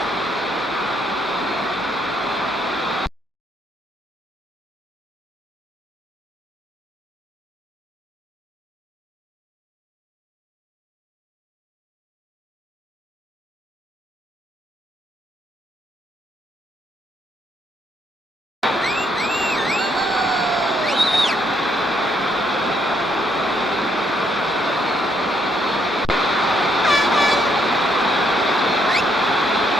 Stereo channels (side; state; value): both; normal; correlation 0.73